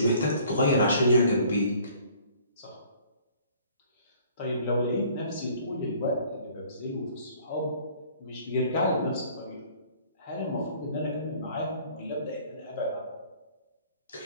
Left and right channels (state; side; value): inverted; both; correlation -0.55